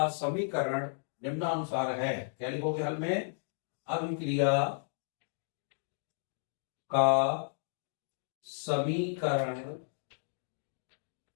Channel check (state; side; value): silent; right; digital silence